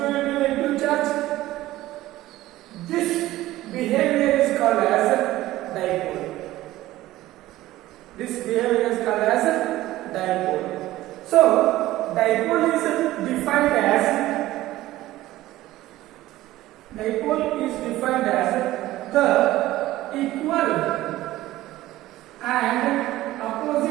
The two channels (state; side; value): quieter; left; 16.1 dB